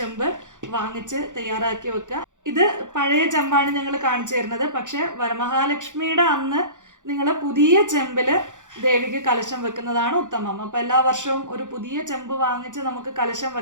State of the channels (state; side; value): late; left; 0.86 ms